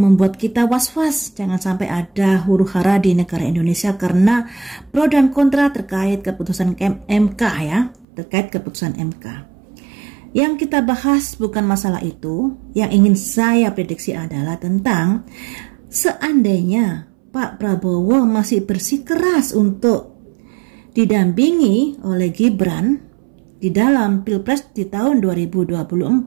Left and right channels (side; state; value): left; drops out; at 8.1 s